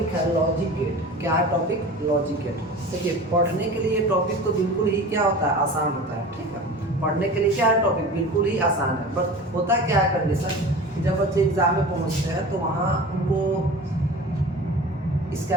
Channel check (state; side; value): normal; both; correlation 0.36